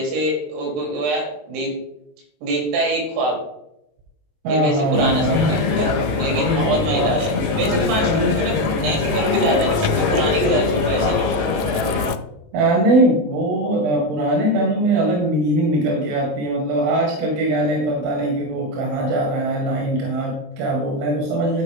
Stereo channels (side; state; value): left; late; 20 ms